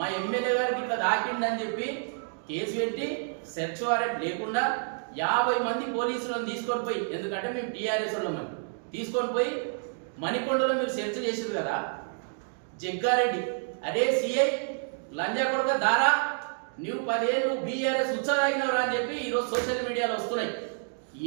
ఎమ్మెల్యే గారికి ఇట్లా దాకిండని చెప్పి కేసు పెట్టి సెర్చ్ వారెంట్ లేకుండా 50 మంది పోలీసులను తీసుకొని పోయి, ఎందుకంటే మేము టీఆర్ఎస్ వాళ్ళమని తీసుకొని పోయి మణికొండలో మీరు సెర్చ్ చేసారు కదా. జగ్గారెడ్డి అరే సిఐ లంజా కొడుక దారా నువ్వు 10 ఏళ్ళు బీఆర్ఎస్ ఉత్సాహమైనవరా అని చెప్పి ఈరోజు సోషల్ మీడియాలో వస్తున్నాయి.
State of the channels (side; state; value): left; silent; digital silence